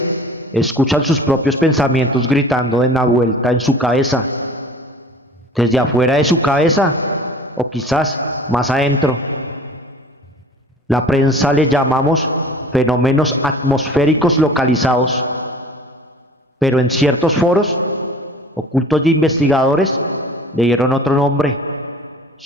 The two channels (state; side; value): normal; both; correlation 0.44